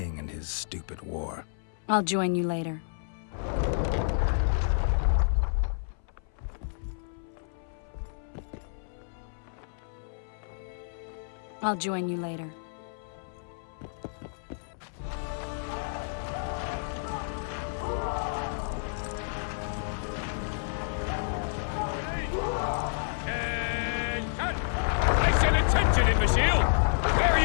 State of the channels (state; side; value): silent; right; 58 dB below the other